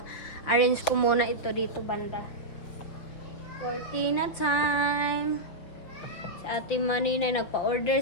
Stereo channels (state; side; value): late; right; 5.8 ms